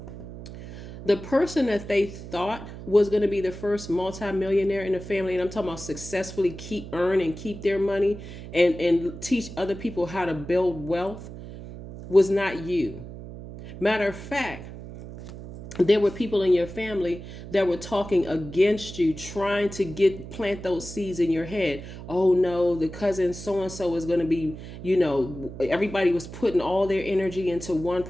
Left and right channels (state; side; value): noise; right; hum, 12 dB below the sound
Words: The person that they thought was going to be the first multimillionaire in the family, and I'm talking about successfully earn and keep their money and teach other people how to build wealth, was not you. Matter of fact, there were people in your family that were talking against you, trying to plant those seeds in your head. Oh no, the cousin so-and-so is going to be, everybody was putting all their energy into one